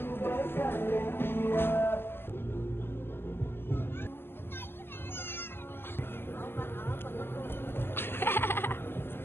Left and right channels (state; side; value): late; right; 0.11 ms